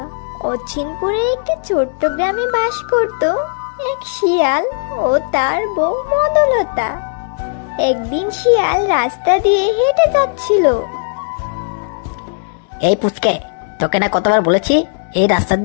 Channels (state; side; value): silent; right; digital silence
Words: অচিনপুরের একটি ছোট্ট গ্রামে বাস করত এক শিয়াল ও তার বউ মধুলতা। একদিন শিয়াল রাস্তা দিয়ে হেঁটে যাচ্ছিল। এই পুচকে, তোকে না কতবার বলেছি এই রাস্তা